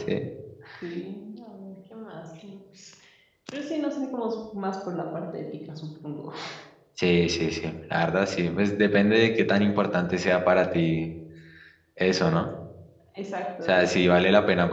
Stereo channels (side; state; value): both; identical; correlation 1.00